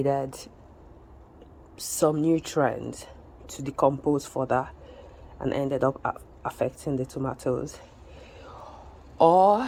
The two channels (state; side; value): identical; both; correlation 1.00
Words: some nutrients to decompose further and ended up affecting the tomatoes, or